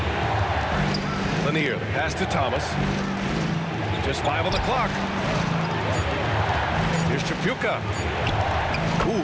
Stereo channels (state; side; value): identical; both; correlation 1.00